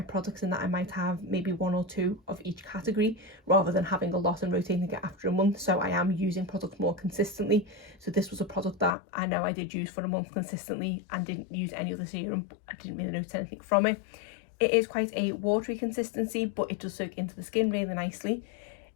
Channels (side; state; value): right; drops out; at 9.0 s